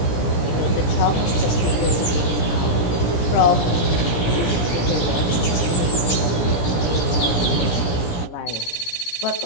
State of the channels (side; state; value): right; late; 17 ms